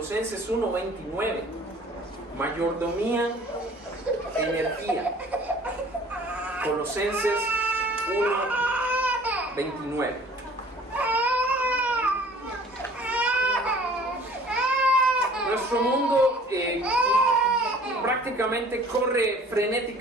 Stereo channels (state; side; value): normal; both; correlation 0.51